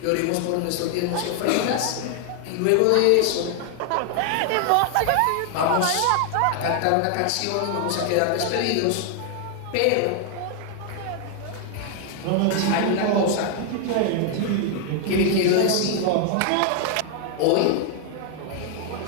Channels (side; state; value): both; different; correlation 0.00